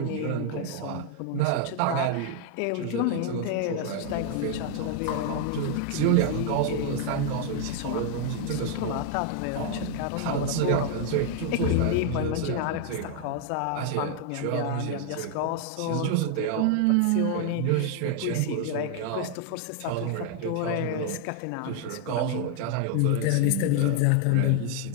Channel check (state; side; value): different; both; correlation 0.00